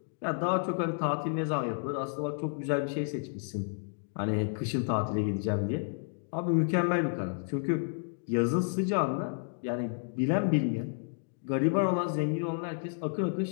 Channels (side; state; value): right; silent; digital silence